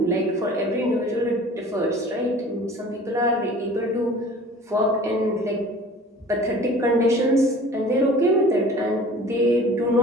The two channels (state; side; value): normal; both; correlation 0.45